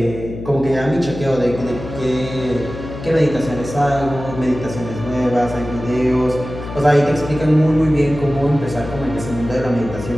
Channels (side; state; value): left; noise; hum, 10 dB below the sound